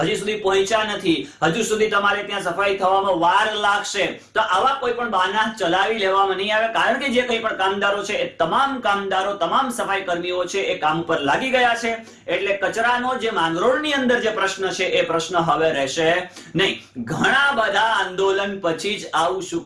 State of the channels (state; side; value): identical; both; correlation 1.00